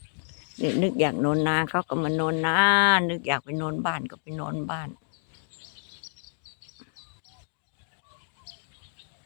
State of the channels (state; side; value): silent; right; 59 dB below the other